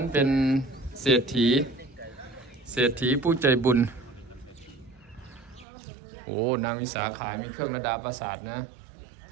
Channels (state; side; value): drops out; left; at 5.7 s